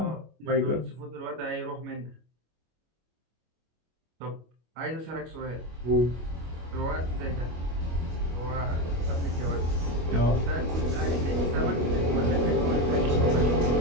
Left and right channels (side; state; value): left; late; 25 ms